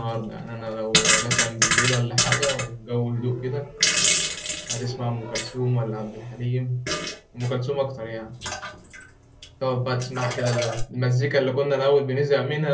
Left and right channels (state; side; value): identical; both; correlation 1.00